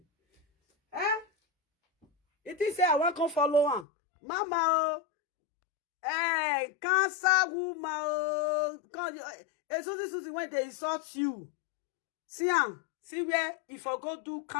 Eh? It is say I want to follow on. Mama, oh. Hey, cancer woman, oh. Suzy, when they insult you. See where if I go do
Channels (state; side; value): drops out; right; at 3.9 s